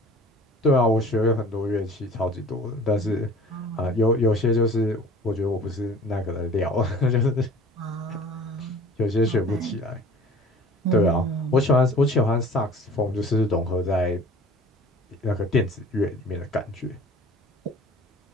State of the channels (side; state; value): both; normal; correlation 0.46